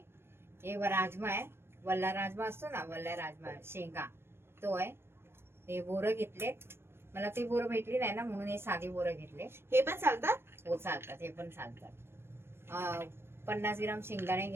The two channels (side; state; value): left; late; 0.12 ms